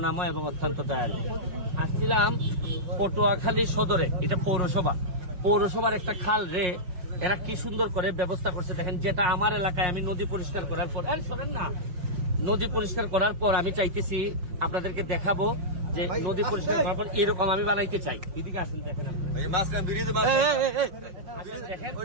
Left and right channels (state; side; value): late; left; 5.6 ms